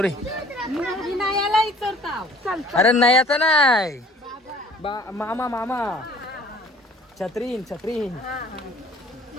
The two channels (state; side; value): normal; both; correlation 0.52